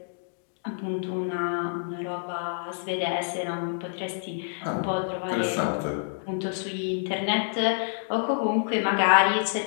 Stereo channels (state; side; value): silent; right; digital silence